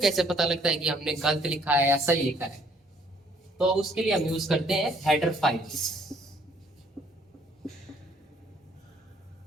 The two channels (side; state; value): both; normal; correlation 0.63